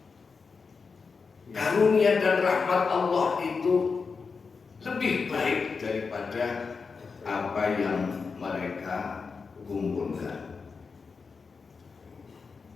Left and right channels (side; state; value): right; quieter; 5.0 dB